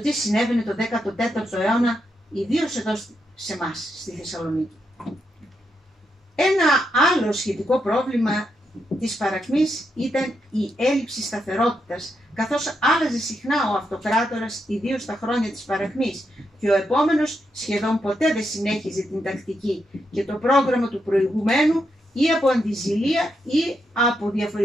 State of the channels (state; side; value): normal; both; correlation 0.82